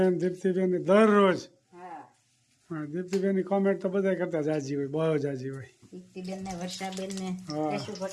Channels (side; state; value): both; identical; correlation 1.00